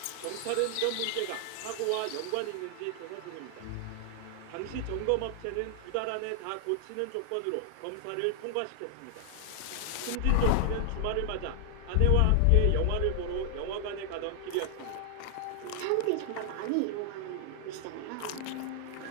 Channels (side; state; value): both; different; correlation 0.00